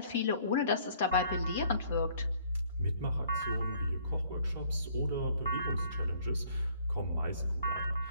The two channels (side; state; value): both; inverted; correlation -0.60